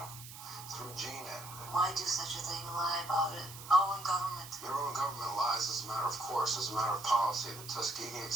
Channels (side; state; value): right; noise; hiss, 13 dB below the sound